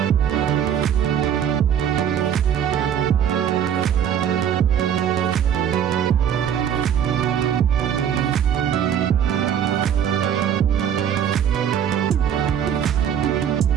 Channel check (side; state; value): left; quieter; 8.9 dB